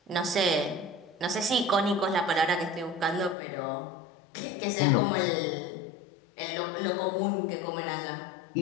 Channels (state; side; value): drops out; right; at 3.4 s